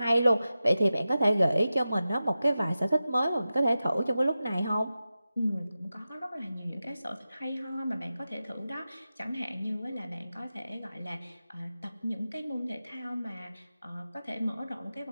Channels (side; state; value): both; inverted; correlation -0.94